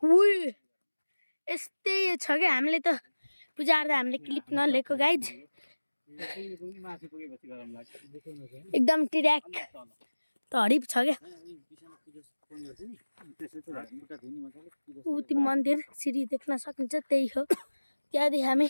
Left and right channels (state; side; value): inverted; both; correlation -1.00